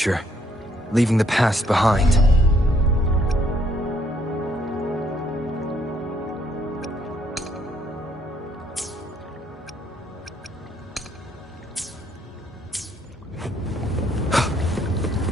leaving the past behind.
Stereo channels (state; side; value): normal; both; correlation 0.69